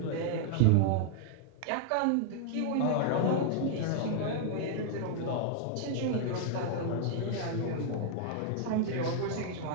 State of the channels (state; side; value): different; both; correlation -0.01